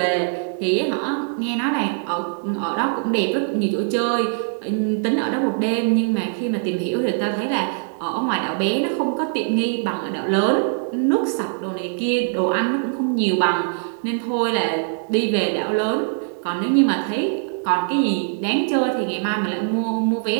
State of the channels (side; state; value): left; silent; 64 dB below the other